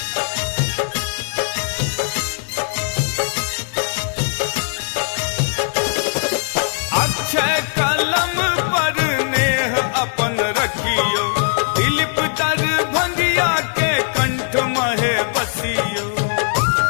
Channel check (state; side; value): silent; right; digital silence